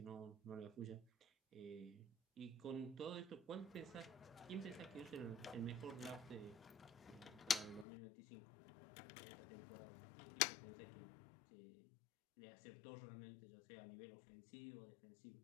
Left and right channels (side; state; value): right; drops out; at 7.9 s